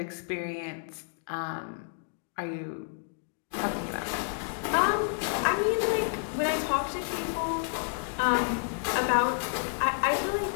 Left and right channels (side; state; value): right; silent; digital silence